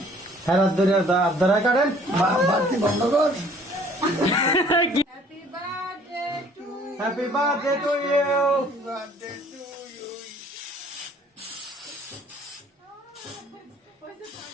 হ্যাঁ হাত ধরে হাত ধরে কাটেন বাড়তি বন্ধ কর happy birthday to you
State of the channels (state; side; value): normal; both; correlation 0.56